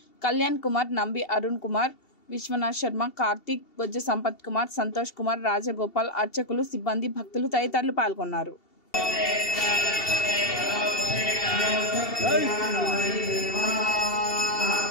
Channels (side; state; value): right; late; 2.7 ms